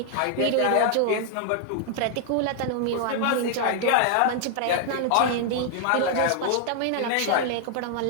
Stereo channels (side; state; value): both; different; correlation -0.01